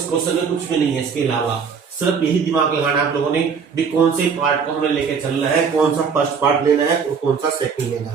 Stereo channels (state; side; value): quieter; left; 6.1 dB